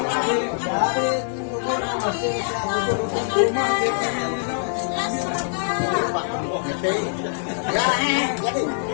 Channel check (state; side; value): silent; right; digital silence